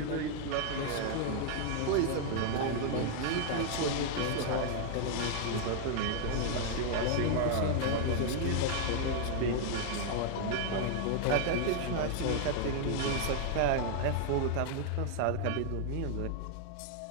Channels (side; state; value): both; different; correlation 0.00